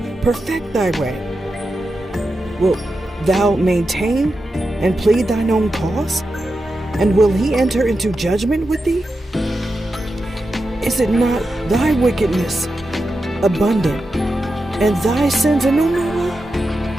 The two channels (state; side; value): normal; both; correlation 0.89